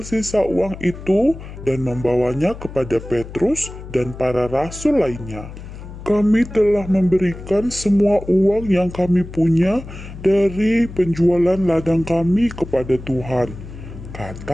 sisa uang itu dan membawanya kepada Petrus dan para rasul lainnya. Kami telah memberikan semua uang yang kami punya dari penjualan ladang kami kepada Tuhan,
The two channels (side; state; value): left; noise; hum, 13 dB below the sound